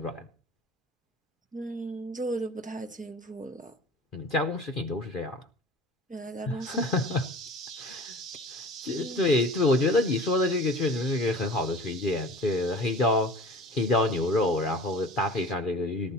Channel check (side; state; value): both; normal; correlation 0.41